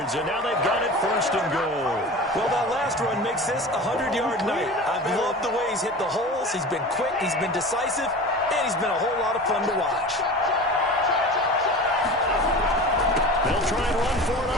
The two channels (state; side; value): normal; both; correlation 0.34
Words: and now they've got it 1st and goal. Well, that last run makes this a 100-yard night. I've loved the way he's hit the holes. He's been quick, he's been decisive, and he's been a whole lot of fun to watch. They'll try and run for it